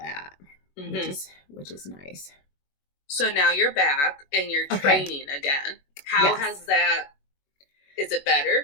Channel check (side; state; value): right; late; 21 ms